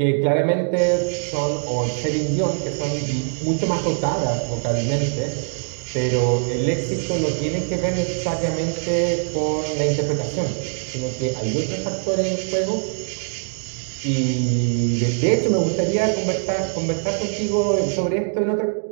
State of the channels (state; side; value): silent; left; digital silence